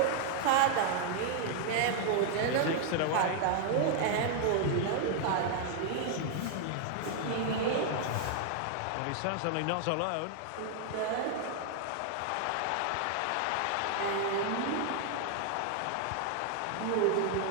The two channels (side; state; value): both; different; correlation 0.00